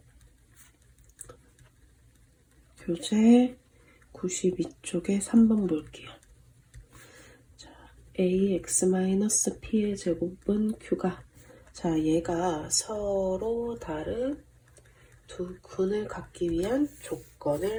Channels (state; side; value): identical; both; correlation 1.00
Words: 교재 92쪽에 3번 볼게요. 자, ax-p의 제곱은 q가, 자, 얘가 서로 다른 두 근을 갖기 위한